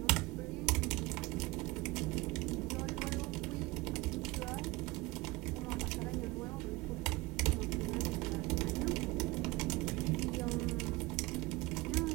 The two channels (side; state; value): left; quieter; 22.3 dB